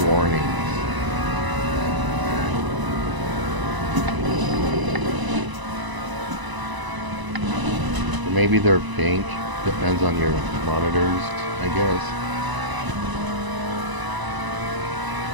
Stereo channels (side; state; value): left; late; 1.0 ms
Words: Maybe they're pink, depends on your monitors, I guess.